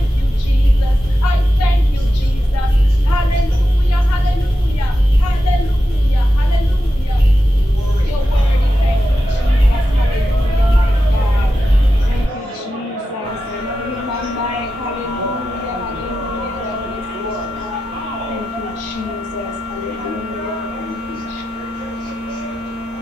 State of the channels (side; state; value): both; normal; correlation 0.90